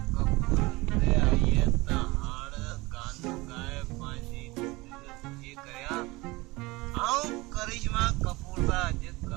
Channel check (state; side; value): quieter; left; 22.3 dB